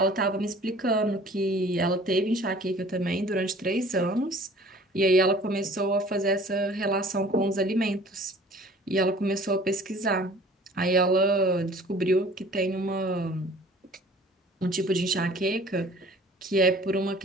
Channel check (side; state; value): both; normal; correlation 0.49